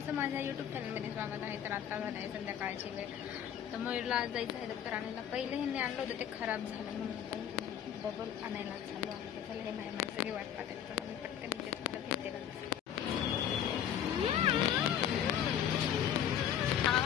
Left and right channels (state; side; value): quieter; right; 9.7 dB